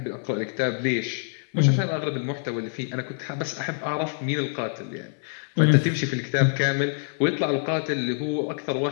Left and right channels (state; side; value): silent; right; 61 dB below the other